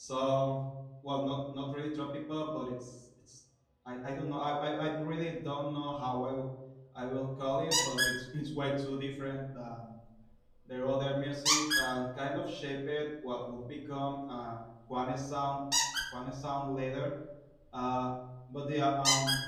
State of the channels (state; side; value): identical; both; correlation 1.00